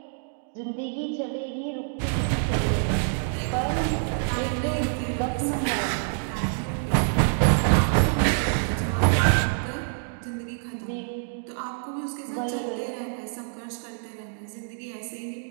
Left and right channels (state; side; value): silent; left; digital silence